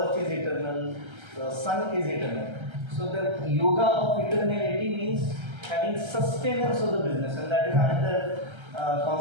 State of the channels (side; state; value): left; late; 1.3 ms